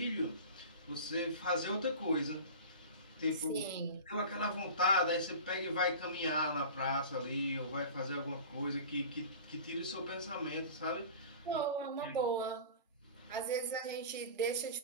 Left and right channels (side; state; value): both; inverted; correlation -0.36